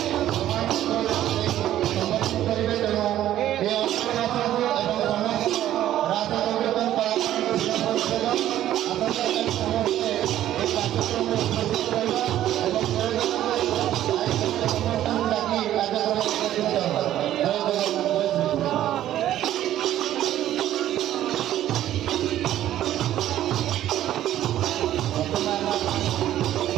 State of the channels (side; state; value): left; quieter; 12.5 dB